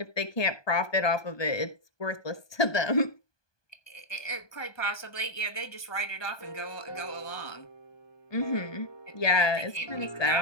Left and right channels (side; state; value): right; late; 1.2 ms